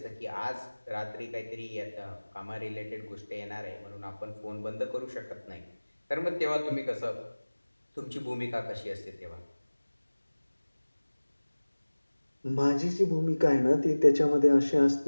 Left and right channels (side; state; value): both; inverted; correlation -1.00